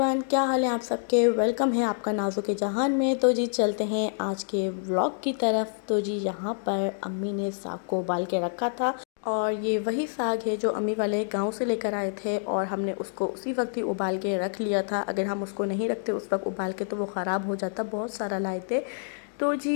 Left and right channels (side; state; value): right; silent; digital silence